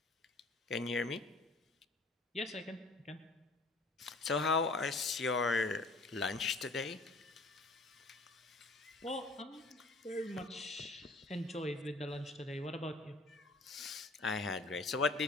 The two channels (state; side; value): quieter; right; 3.2 dB